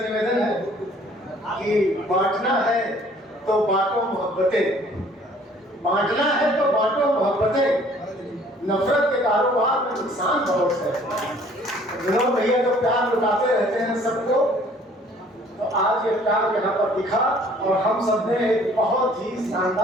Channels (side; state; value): both; normal; correlation 0.56